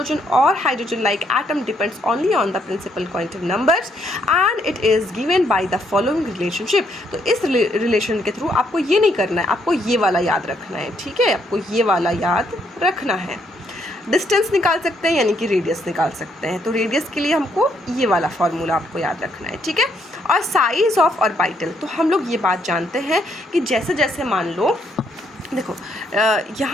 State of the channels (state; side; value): normal; both; correlation 0.72